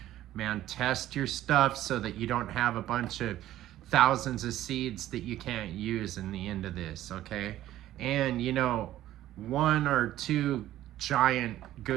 man, test your stuff so that you don't have a bunch of thousands of seeds that you can't use in the end of this, okay? And you know, 1 or 2 giant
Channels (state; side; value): quieter; left; 13.7 dB